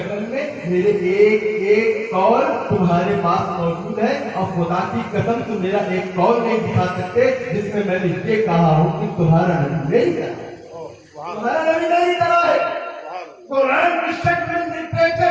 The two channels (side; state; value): both; identical; correlation 1.00